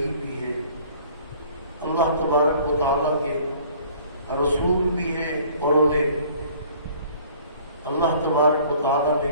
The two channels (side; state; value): both; inverted; correlation -0.53